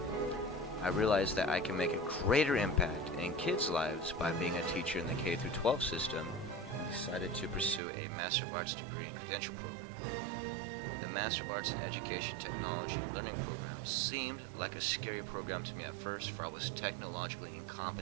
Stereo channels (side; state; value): left; drops out; at 7.8 s